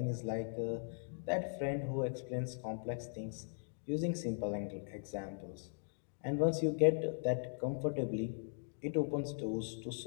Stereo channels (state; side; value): silent; right; digital silence